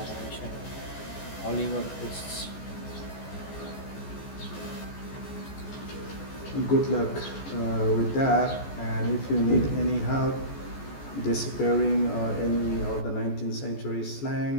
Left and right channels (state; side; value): late; right; 14 ms